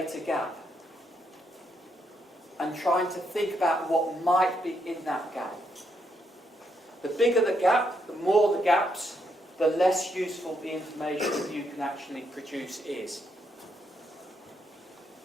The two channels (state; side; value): normal; both; correlation 0.77